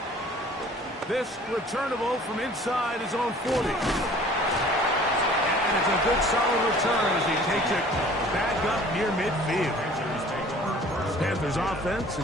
This returnable from inside his own 40. And it's a good solid return as he takes it back up near midfield. Panthers offense and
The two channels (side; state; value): both; normal; correlation 0.50